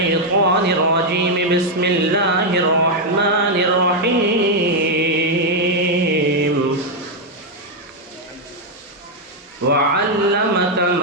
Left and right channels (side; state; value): both; normal; correlation 0.01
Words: الرجيم بسم الله الرحمن الرحيم وعلمك